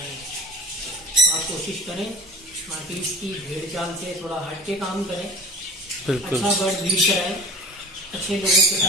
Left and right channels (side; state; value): both; normal; correlation 0.36